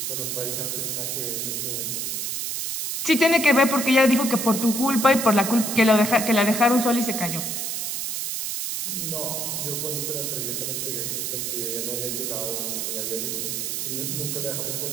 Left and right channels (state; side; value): noise; right; hiss, 2 dB below the sound